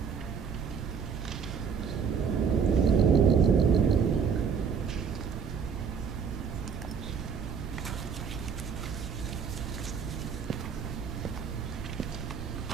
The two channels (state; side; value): quieter; left; 6.6 dB